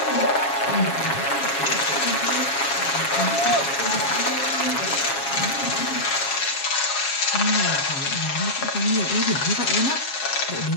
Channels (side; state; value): right; late; 7.3 ms